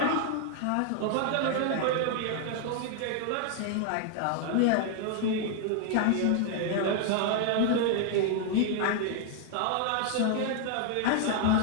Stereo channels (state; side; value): different; both; correlation 0.00